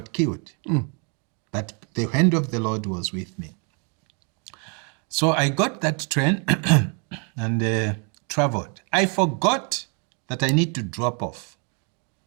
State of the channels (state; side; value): quieter; left; 37.7 dB